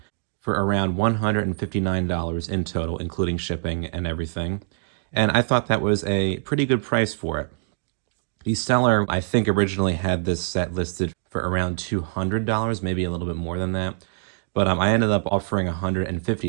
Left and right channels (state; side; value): silent; left; digital silence